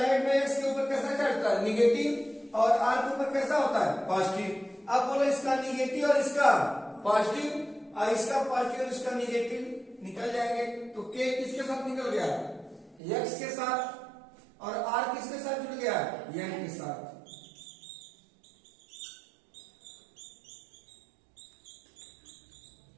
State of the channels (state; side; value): drops out; left; at 13.0 s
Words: में इसके ऊपर कैसा चढ़ता है, निगेटिव, और आर के ऊपर कैसा होता है, पॉजिटिव। अब बोलो इसका निगेटिव और इसका पॉजिटिव, और इसका पॉजिटिव और इसका निगेटिव निकल जाएंगे। तो के किसके साथ निकल गया, एक्स के साथ, और आर किसके साथ जुड़ गया, एन के साथ।